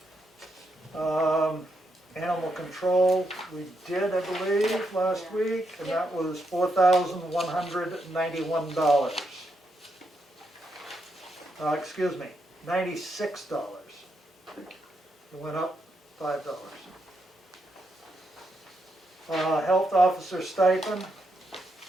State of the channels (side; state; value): both; normal; correlation 0.80